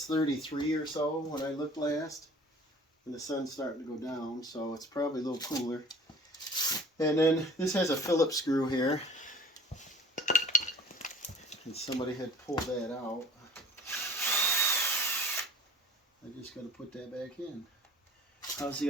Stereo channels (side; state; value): both; normal; correlation 0.46